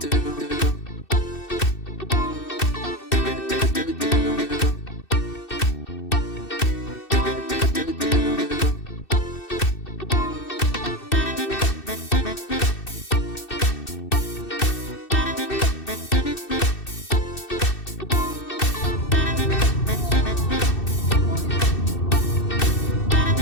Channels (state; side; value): late; right; 2.6 ms